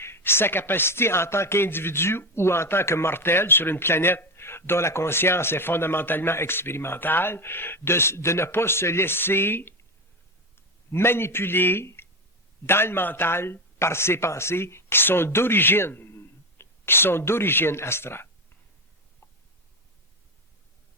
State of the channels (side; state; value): both; normal; correlation 0.16